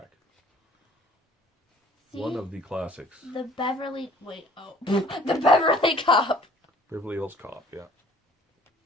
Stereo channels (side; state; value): both; normal; correlation 0.54